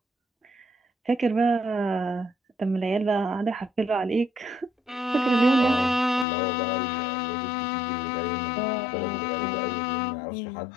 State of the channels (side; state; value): right; drops out; at 6.2 s